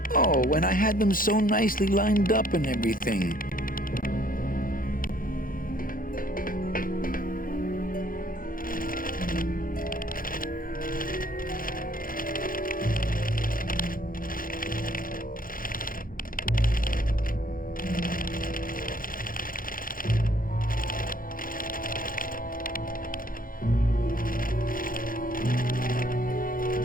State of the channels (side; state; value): right; late; 0.41 ms